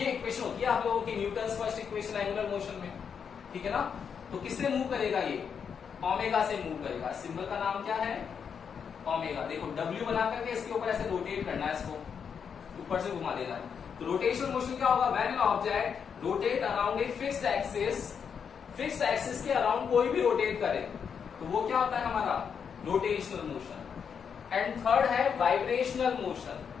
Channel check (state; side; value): quieter; right; 6.9 dB